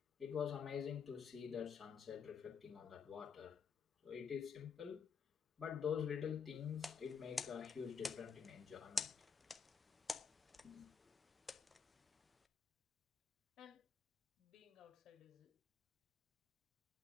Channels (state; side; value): quieter; right; 6.3 dB